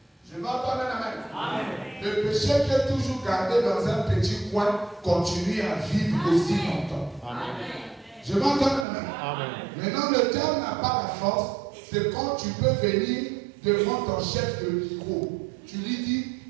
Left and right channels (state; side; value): drops out; left; at 8.8 s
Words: Je vais entendre la main. Amen. Le péché qui est toujours gardé dans un petit coin continue à vivre aussi longtemps. Amen. Je vais entendre la main. Amen. Maintenant, le diable n'a pas la force. C'est quand tu peux venir devant ton chef de micro. Tu lui dis,